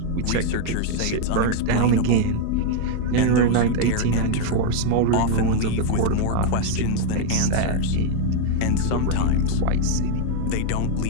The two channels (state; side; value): different; both; correlation 0.00